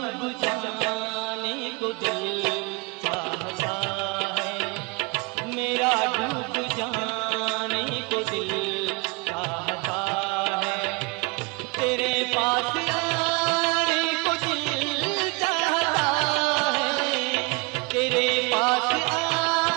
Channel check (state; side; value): quieter; left; 28.3 dB